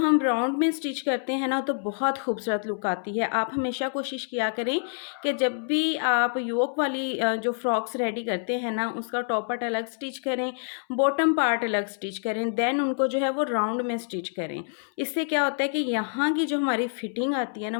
हम राउंड में स्टिच करते हैं ना तो बहुत खूबसूरत लुक आती है। आप हमेशा कोशिश किया करें कि जब भी आप योक वाली जो फ्रॉक्स रेडी करते हैं ना उसका टॉप पार्ट अलग स्टिच करें, बॉटम पार्ट अलग स्टिच करें, देन उनको जो है वो राउंड में स्टिच करें। इससे क्या होता है कि यहाँ की जो हमारी फिटिंग आती है ना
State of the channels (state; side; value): silent; right; 60 dB below the other